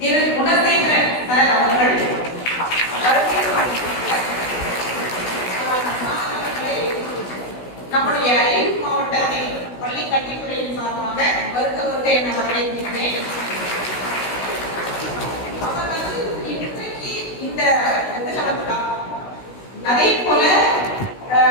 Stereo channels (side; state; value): right; late; 16 ms